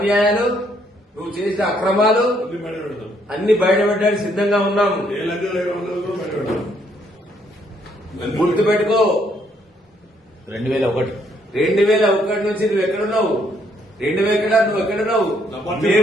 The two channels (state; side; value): normal; both; correlation 0.70